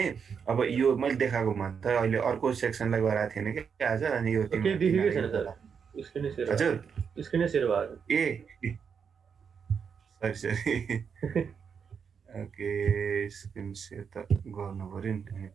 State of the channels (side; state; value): left; quieter; 6.6 dB